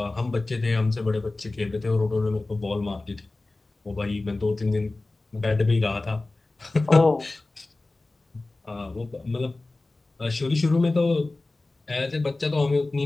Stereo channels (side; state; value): right; quieter; 3.1 dB